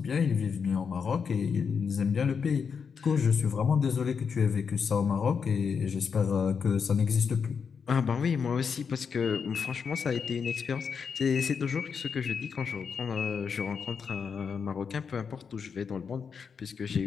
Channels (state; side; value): quieter; right; 6.2 dB